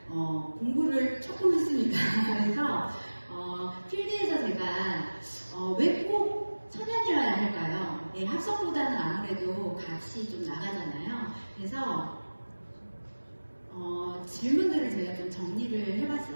공부를 조금 했습니다. 그래서 필드에서 제가 왜 꼭 천연이어야 할까요? 네, 합성보다는 아무래도 값이 좀 나가잖아요. 그래서 질문들을 제가 좀 정리를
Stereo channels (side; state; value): both; inverted; correlation -1.00